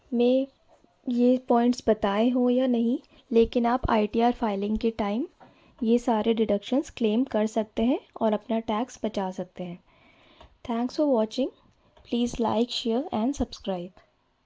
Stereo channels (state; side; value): identical; both; correlation 1.00